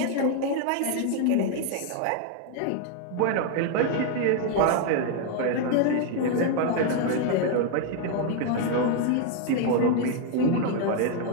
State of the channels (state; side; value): different; both; correlation 0.00